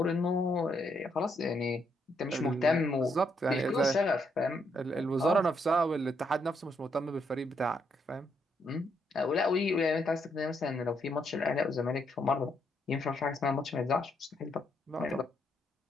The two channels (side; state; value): both; normal; correlation 0.75